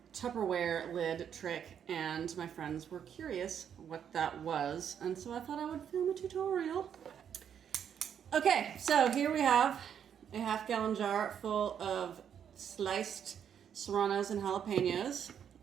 Tupperware lid trick, and my friends were curious what that was, and so I thought I would film a tutorial. Okay, so here we have a half-gallon jar full of sliced serranos and jalapenos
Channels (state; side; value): quieter; left; 8.5 dB